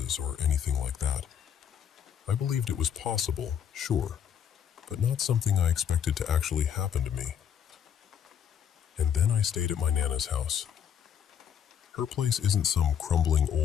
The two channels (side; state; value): right; quieter; 8.7 dB